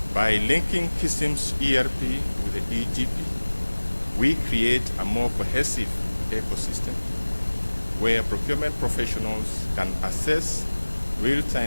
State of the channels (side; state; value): both; inverted; correlation -1.00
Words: By linking Kism's ERP with the EGP, we create a more cohesive ecosystem where procurement professionals can assess